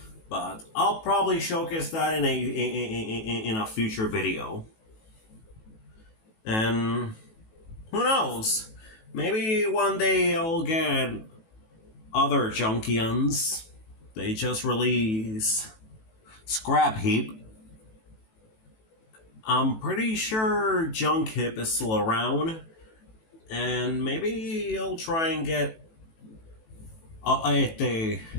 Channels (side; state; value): right; late; 18 ms